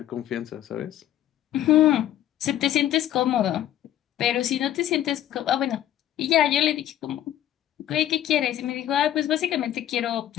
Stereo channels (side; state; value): right; quieter; 12.1 dB